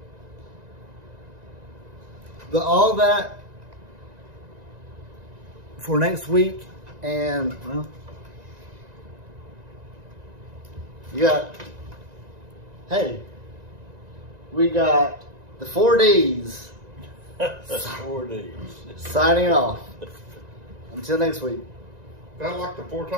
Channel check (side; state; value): left; late; 1.9 ms